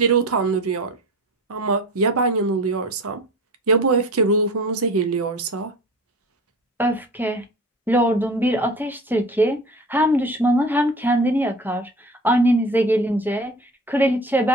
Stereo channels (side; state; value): both; normal; correlation 0.37